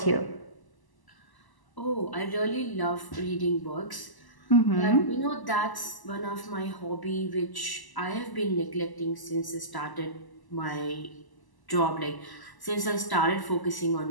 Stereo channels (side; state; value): right; late; 1.0 ms